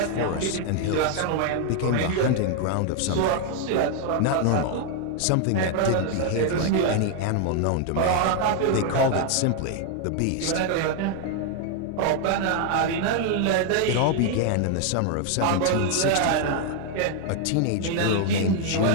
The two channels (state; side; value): different; both; correlation 0.00